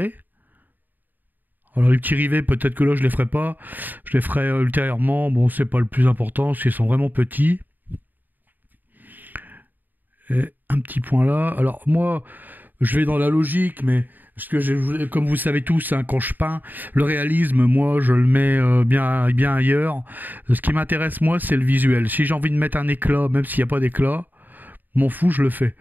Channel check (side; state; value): left; late; 0.088 ms